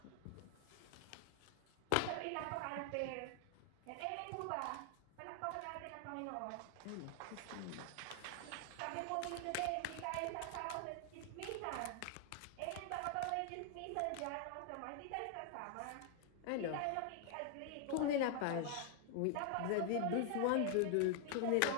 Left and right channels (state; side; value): different; both; correlation 0.00